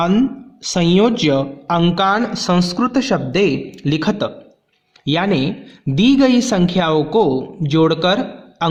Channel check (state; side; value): identical; both; correlation 1.00